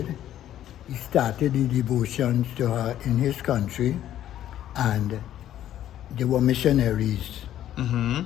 he started the devotions to her in his country, and they were missionaries.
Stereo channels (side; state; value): right; quieter; 11.8 dB